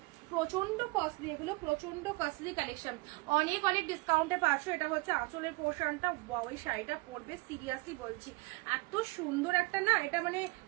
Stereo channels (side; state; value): left; quieter; 24.1 dB